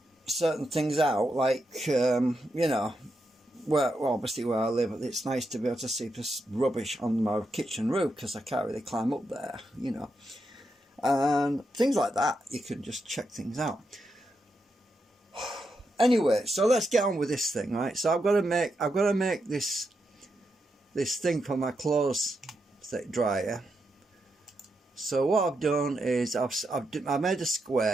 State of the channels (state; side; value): normal; both; correlation 0.84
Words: certain things out, like you know, well, obviously where I live, it's nice to be able to see this rubbish on my kitchen roof because I can't really climb up there, you know, and things like that. You can just check things out. Anyway, so let's get on with this thing, right? So I've got to make this thing for my clothes dryer. So what I've done is I made a